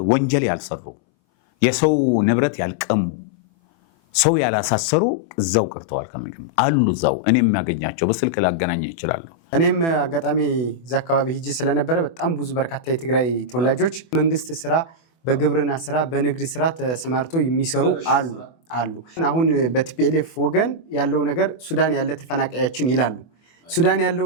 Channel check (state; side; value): late; right; 24 ms